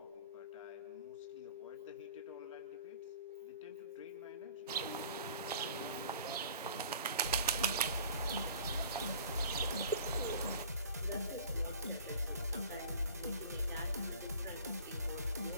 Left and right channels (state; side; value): inverted; both; correlation -0.47